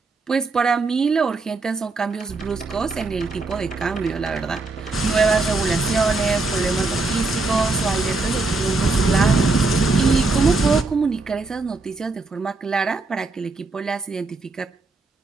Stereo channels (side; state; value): left; quieter; 3.6 dB